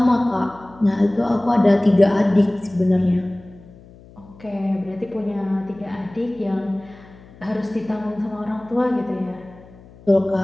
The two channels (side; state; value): left; noise; hum, 23 dB below the sound